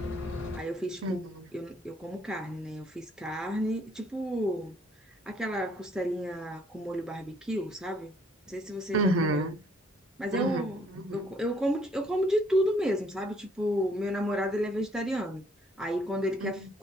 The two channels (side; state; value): both; normal; correlation 0.64